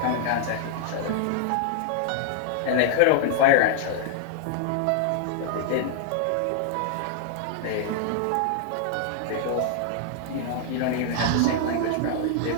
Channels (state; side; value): different; both; correlation -0.01